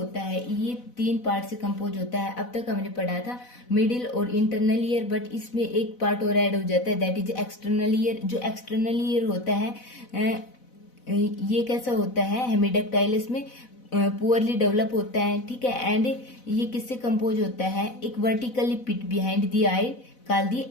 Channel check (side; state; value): right; late; 4.0 ms